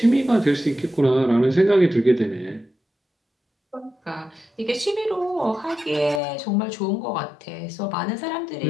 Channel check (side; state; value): right; drops out; at 6.2 s